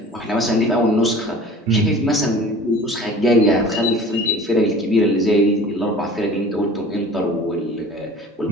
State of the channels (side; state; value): both; normal; correlation 0.44